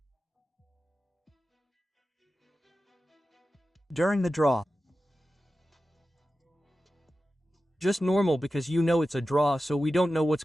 During the draw. Just normal because you know it's a draw, so we don't know what's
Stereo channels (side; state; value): both; normal; correlation 0.93